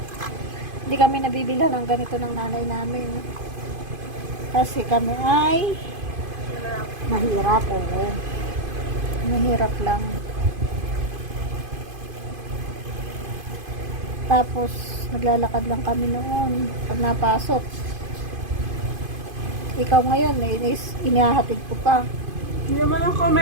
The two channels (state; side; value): late; left; 2.5 ms